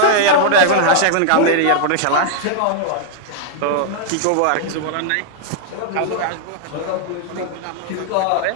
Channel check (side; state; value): both; different; correlation -0.01